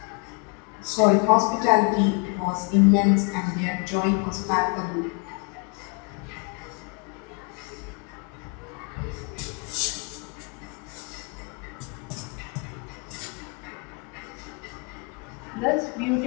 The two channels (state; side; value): quieter; right; 33.5 dB